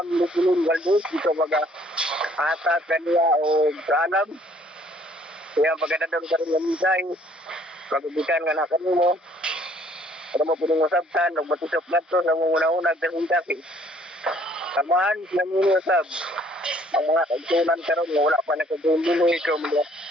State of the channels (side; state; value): both; normal; correlation 0.60